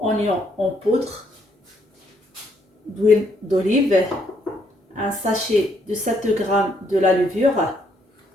en poudre, d'huile d'olive, un sachet de 7 g de la levure,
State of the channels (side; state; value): both; normal; correlation 0.71